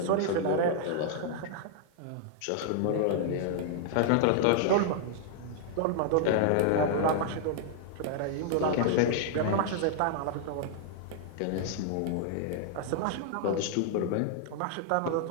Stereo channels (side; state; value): both; different; correlation -0.01